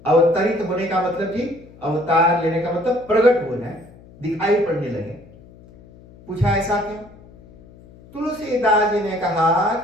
अवतरित होने का मतलब जी, अवतार लेने का मतलब प्रकट हो जाए, दिखाई पड़ने लगे। पूछा ऐसा क्यों? तुलसीदास जी ने कहा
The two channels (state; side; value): noise; left; hum, 23 dB below the sound